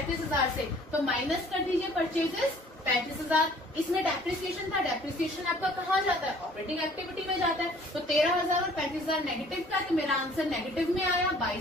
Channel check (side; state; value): both; normal; correlation 0.55